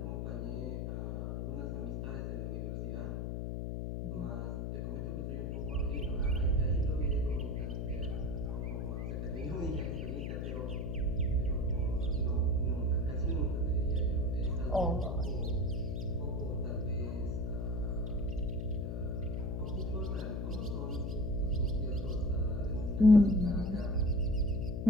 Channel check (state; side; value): noise; left; hum, 2 dB below the sound